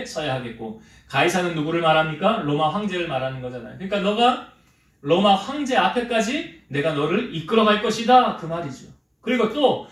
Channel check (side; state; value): both; identical; correlation 1.00